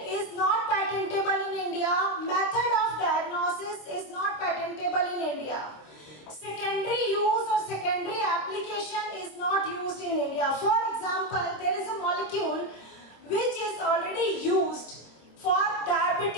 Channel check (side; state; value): right; late; 26 ms